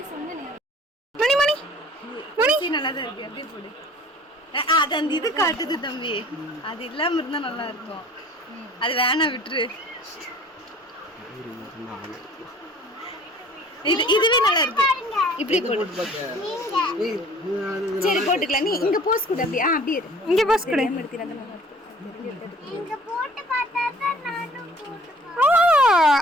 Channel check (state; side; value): normal; both; correlation 0.50